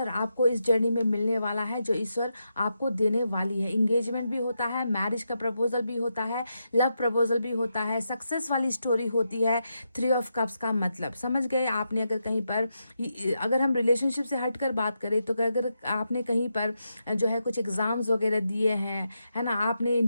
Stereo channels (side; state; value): both; inverted; correlation -0.85